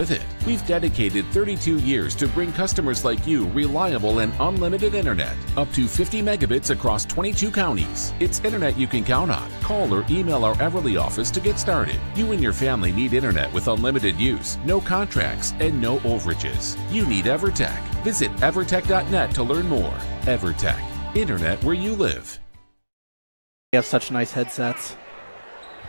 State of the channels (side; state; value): both; inverted; correlation -1.00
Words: it. We've dedicated 32 years to bring customers like you reliable and unlimited internet, up to 50 megabits across 22 counties. It's internet you can count on. Call or email our Everly office to get started. You and your family need internet with unlimited use, no contracts, and no overages. You need EverTech. Visit evertech.net to learn more. EverTech, internet where you live. We have such nice headsets.